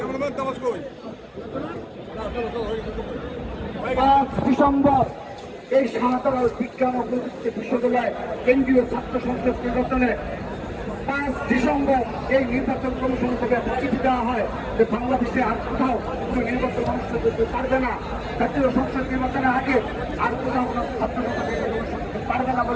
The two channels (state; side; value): identical; both; correlation 1.00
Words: 5 ডিসেম্বর এই শাহজালাল বিজ্ঞান ও প্রযুক্তি বিশ্ববিদ্যালয় কেন্দ্রীয় ছাত্র সংসদ নির্বাচনে 5 ডিসেম্বর এই নির্বাচন কমিশন থেকে চিঠি দেওয়া হয় যে বাংলাদেশে আর কোথাও কোনো নির্বাচন অনুষ্ঠিত করতে পারবে না, জাতীয় সংসদ নির্বাচনের আগে আর কোথাও কোনো ছাত্র সংসদ নির্বাচন করতে পারবে না